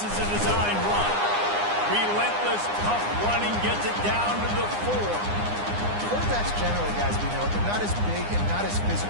is a designed run. Relentless, tough running gets it down to the 4. Quarterbacks generally, guys, we know, they're not as big and not as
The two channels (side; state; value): left; late; 9.8 ms